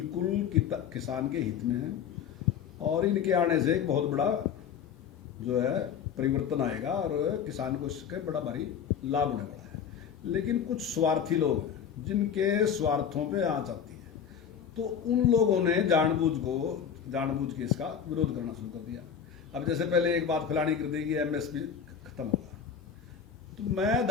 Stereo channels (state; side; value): quieter; right; 7.7 dB